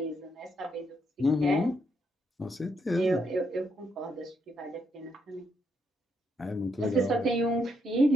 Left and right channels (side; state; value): both; normal; correlation 0.77